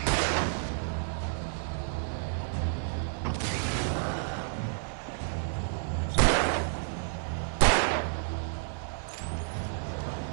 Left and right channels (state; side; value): silent; left; 57 dB below the other